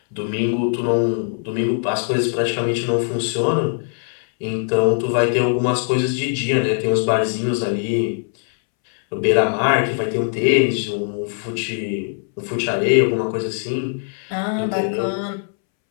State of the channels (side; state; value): right; silent; 65 dB below the other